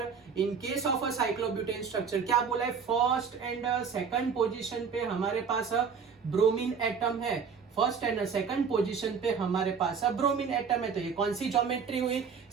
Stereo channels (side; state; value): left; quieter; 6.2 dB